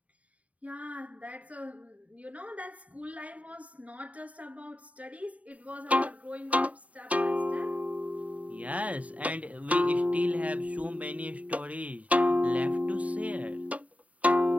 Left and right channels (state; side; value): late; left; 0.068 ms